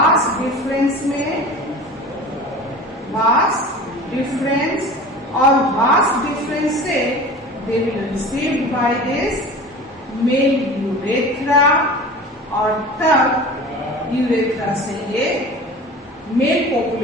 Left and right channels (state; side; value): normal; both; correlation 0.37